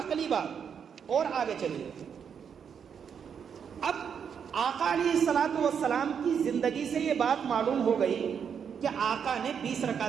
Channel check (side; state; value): left; quieter; 7.3 dB